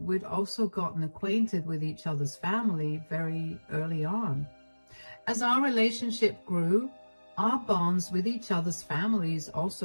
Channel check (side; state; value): both; inverted; correlation -1.00